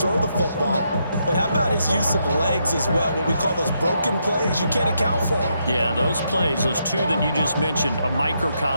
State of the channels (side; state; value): both; inverted; correlation -0.79